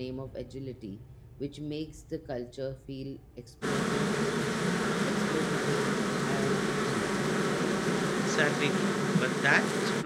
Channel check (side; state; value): both; identical; correlation 1.00